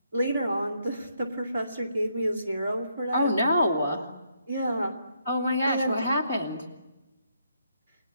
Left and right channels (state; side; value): inverted; both; correlation -0.75